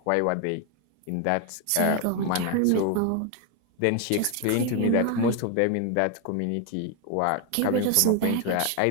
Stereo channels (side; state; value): both; different; correlation 0.01